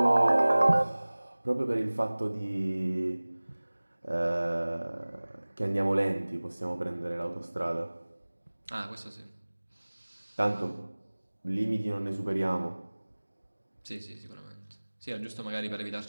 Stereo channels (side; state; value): both; inverted; correlation -1.00